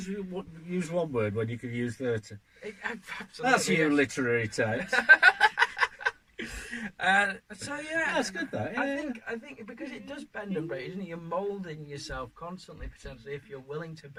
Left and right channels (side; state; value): both; identical; correlation 1.00